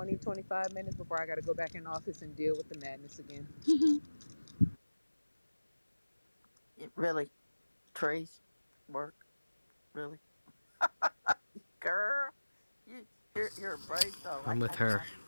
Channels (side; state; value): both; inverted; correlation -1.00